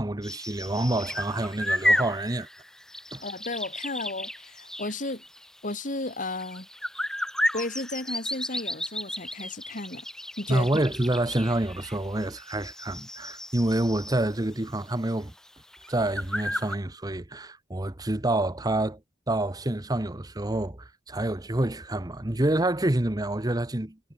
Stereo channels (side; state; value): both; normal; correlation 0.76